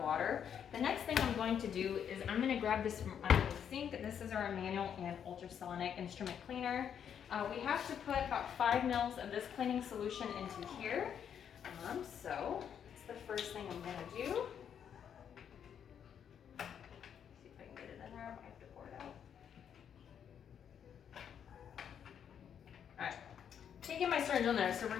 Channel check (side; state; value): right; quieter; 8.4 dB